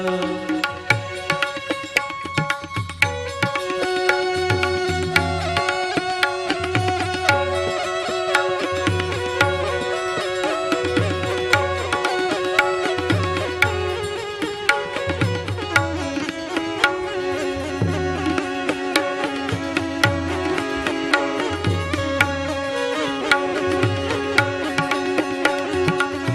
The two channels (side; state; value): both; identical; correlation 1.00